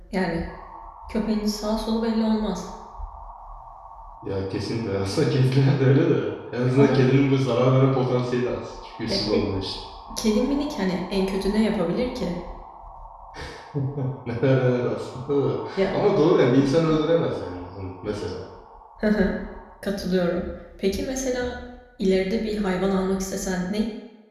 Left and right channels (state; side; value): identical; both; correlation 1.00